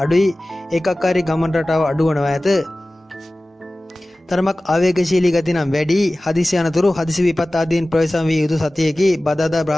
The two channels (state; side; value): normal; both; correlation 0.97